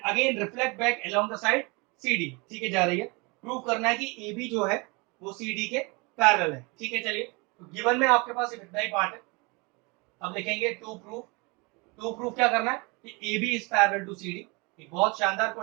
again reflect back along the side CD, ठीक है, जा रही है। प्रूव करना है कि AB जो है वो CD के पैरेलल है। ठीक है, चलिए तो गिवन में आपके पास इतना ही पार्ट है। अब लिखेंगे टू प्रूफ क्या करना है कि AB is parallel to CD। एक बहुत शानदार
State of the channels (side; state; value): left; quieter; 28.3 dB